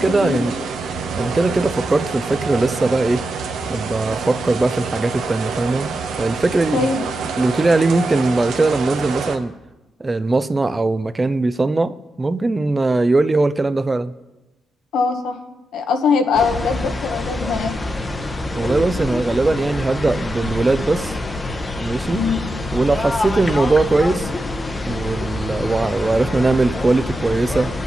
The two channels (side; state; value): both; normal; correlation 0.89